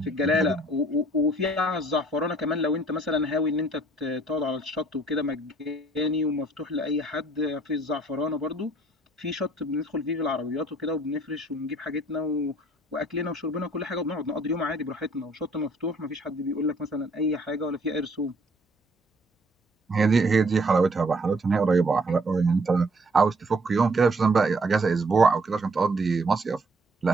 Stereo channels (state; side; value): normal; both; correlation 0.62